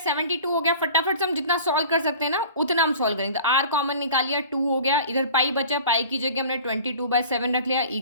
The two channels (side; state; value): both; inverted; correlation -0.43